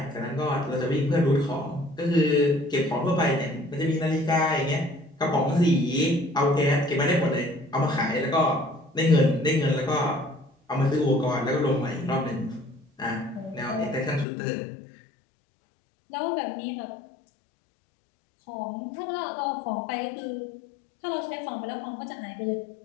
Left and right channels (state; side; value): drops out; right; at 14.2 s